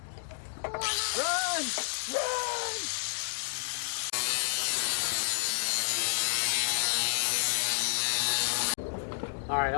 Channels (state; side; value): silent; right; digital silence